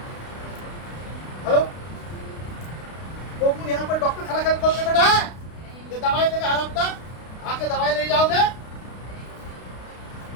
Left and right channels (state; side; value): late; right; 32 ms